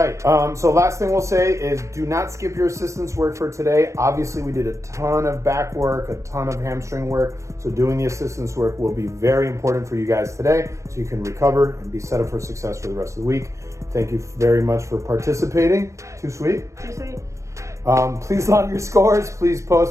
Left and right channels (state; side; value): late; left; 0.15 ms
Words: So last thing we'll say is do not skip your assistance work for today. Obviously, we did a ton of back work, a ton of hamstring work. So doing the assistance work will be very important for you guys today so you can recover and be set up for success for the rest of the week. Thank you very much for participating. Too sweet? Too sweet. Please log your scores. Please